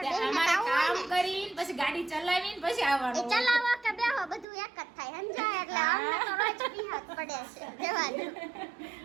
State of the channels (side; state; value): left; drops out; at 4.5 s